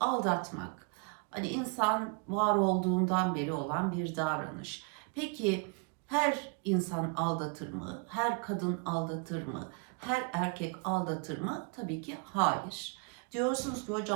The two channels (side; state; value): left; quieter; 33.8 dB